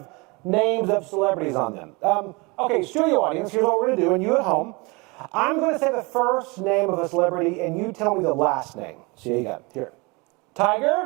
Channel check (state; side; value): quieter; left; 27.2 dB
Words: names of celebrities on them. Okay, studio audience, here's what we're going to do, and you at home. I'm going to say the first name of a celebrity, and you tell me the last name. See, you got it. Here.